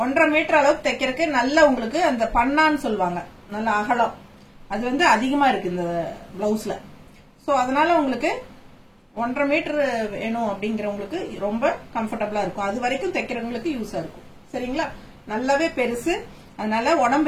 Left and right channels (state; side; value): identical; both; correlation 1.00